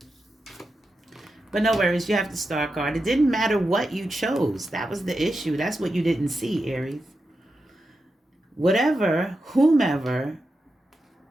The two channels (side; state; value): both; normal; correlation 0.89